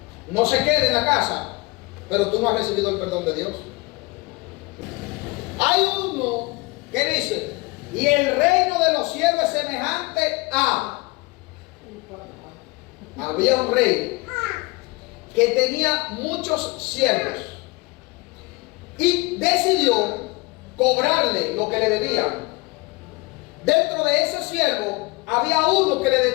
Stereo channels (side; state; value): right; quieter; 25.0 dB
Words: No se quede en la casa, pero tú no has recibido el perdón de Dios. Hay uno que dice, y el reino de los cielos es semejante a... Había un rey que tenía muchos siervos y decidió cobrarle lo que le debían. Dentro de ese siervo había uno que le